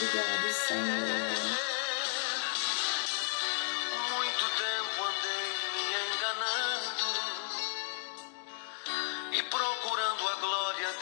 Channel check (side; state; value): right; silent; digital silence